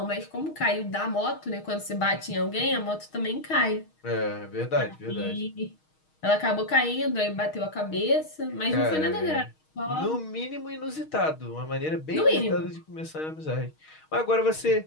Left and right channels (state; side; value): late; right; 6.4 ms